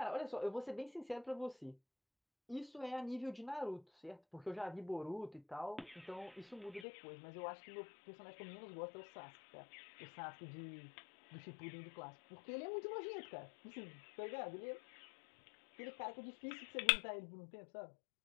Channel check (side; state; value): right; drops out; at 6.9 s